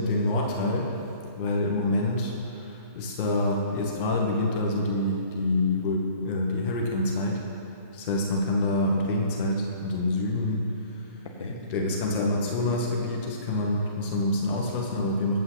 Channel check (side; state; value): both; inverted; correlation -0.50